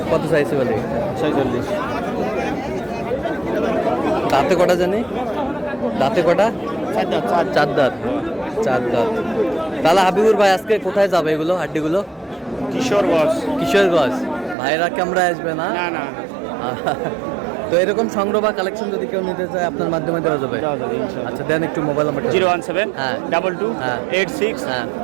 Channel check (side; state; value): left; drops out; at 14.6 s